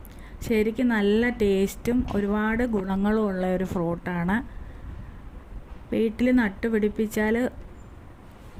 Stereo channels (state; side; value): identical; both; correlation 1.00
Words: ശരിക്കും നല്ല ടേസ്റ്റും ഒരുപാട് ഗുണങ്ങളും ഉള്ള ഒരു ഫ്രൂട്ടാണ്. വീട്ടിൽ നട്ടുപിടിപ്പിച്ചാൽ